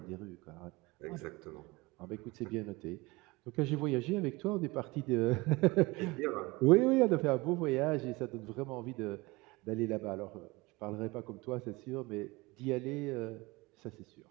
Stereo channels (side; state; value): left; quieter; 23.0 dB